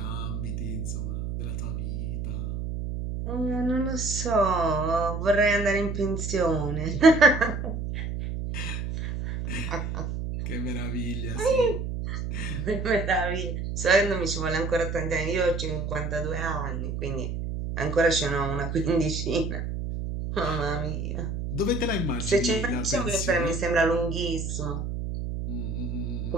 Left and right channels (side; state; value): right; noise; hum, 4 dB below the sound